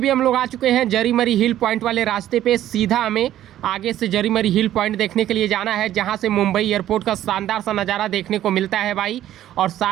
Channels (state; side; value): quieter; left; 12.5 dB